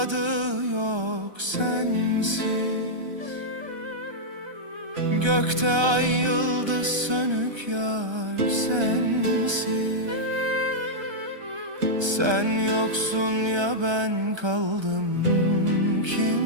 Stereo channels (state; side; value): late; left; 1.3 ms